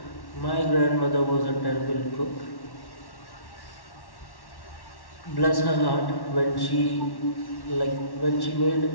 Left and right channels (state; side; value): late; right; 1.1 ms